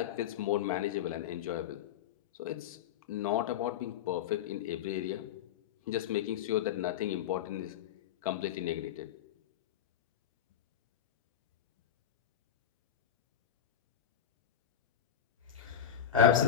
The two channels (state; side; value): quieter; right; 9.4 dB